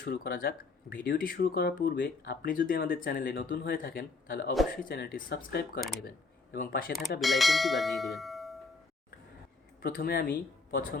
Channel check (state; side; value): quieter; right; 4.1 dB